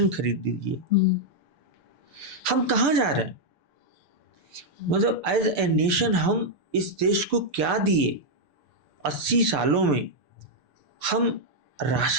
खरीद दीजिए। हम कहाँ जा रहे हैं? मतलब एज ए नेशन हम इस देश को क्या दिए? 80 सालों में हम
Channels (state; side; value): late; left; 6.8 ms